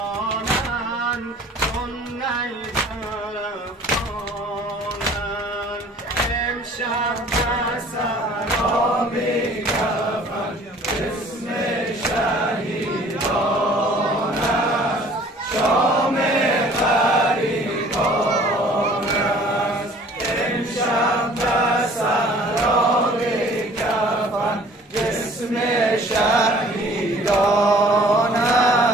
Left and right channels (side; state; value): both; normal; correlation 0.52